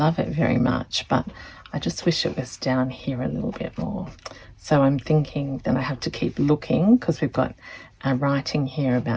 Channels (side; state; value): both; identical; correlation 1.00